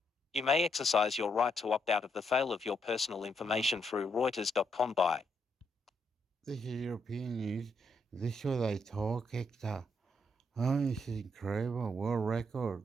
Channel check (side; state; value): both; normal; correlation 0.76